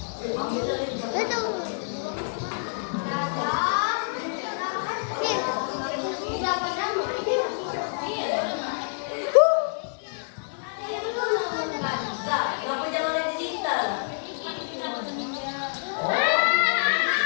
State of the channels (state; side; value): silent; right; 60 dB below the other